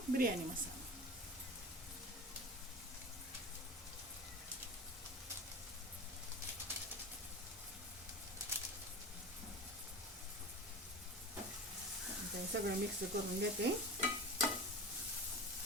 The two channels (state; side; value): normal; both; correlation 0.31